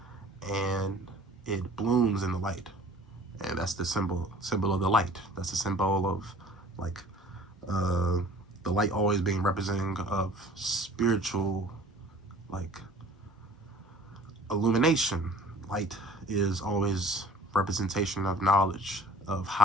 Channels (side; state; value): both; normal; correlation 0.49